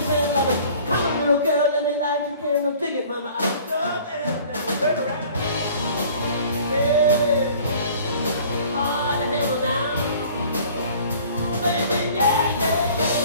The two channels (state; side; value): inverted; both; correlation -0.50